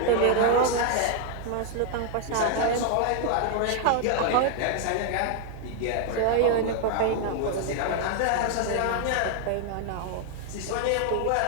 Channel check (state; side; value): different; both; correlation 0.00